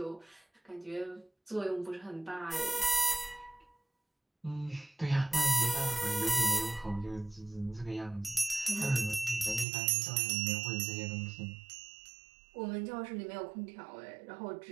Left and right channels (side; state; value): left; drops out; at 9.7 s